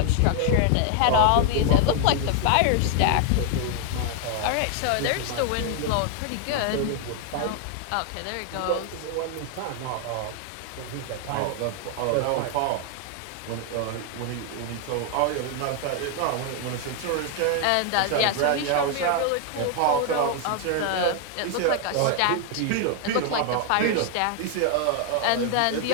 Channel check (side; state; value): both; different; correlation 0.00